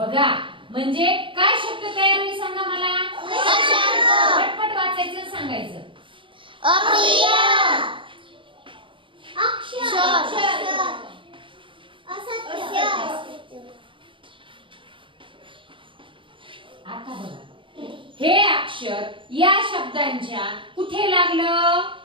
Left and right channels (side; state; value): left; late; 0.25 ms